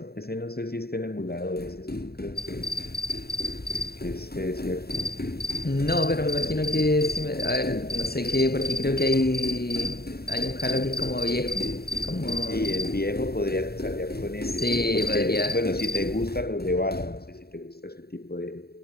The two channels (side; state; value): right; late; 0.46 ms